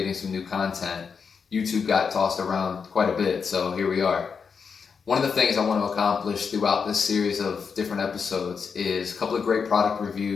some new content. YouTube got tossed around quite a bit, so here we are. One of the things I want to accomplish throughout this series of different episodes is a couple of great product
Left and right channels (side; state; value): right; quieter; 5.9 dB